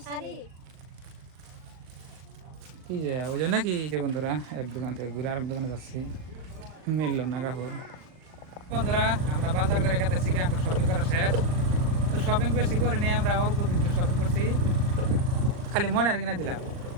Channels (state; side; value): late; left; 39 ms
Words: কি যে ওই জন্য কি। বন্ধুরা, এক দোকান থেকে ঘুরে আরেক দোকানে যাচ্ছি, মিললো না কাপড়। বন্ধুরা, আমরা বাজার করে গেতেছি, এখন শপিং করা শেষ। তো শপিং বেশি করি নাই, আমরা অল্প কিছু শপিং করছি, খালি ময়নার কিনে দিলাম।